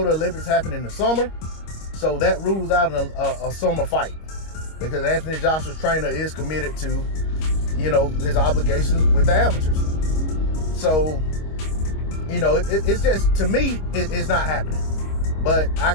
the Olympics happen in the summer, so that rules out a summer fight because Anthony Joshua's trainer is committed to, his obligations with the amateurs. So, it's just, to me, it's not happening. But I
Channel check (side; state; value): right; late; 25 ms